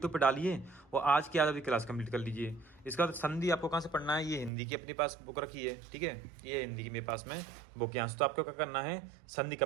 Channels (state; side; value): drops out; left; at 4.5 s